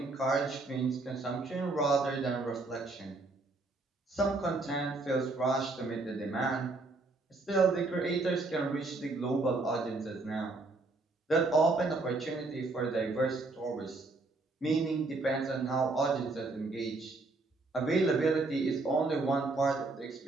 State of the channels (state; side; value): quieter; left; 3.4 dB